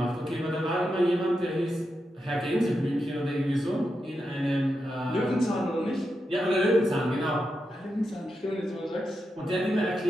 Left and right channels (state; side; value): normal; both; correlation 0.87